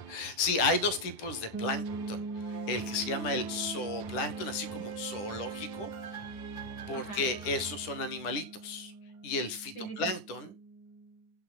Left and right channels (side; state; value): right; late; 10 ms